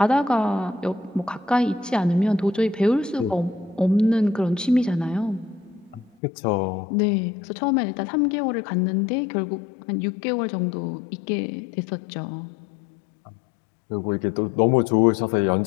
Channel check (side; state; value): right; drops out; at 6.1 s